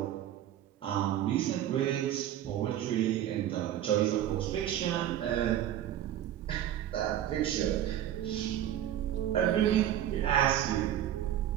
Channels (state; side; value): quieter; left; 11.6 dB